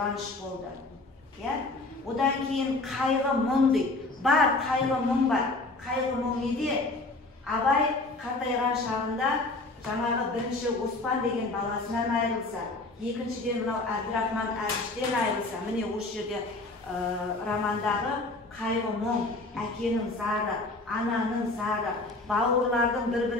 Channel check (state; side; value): quieter; right; 3.1 dB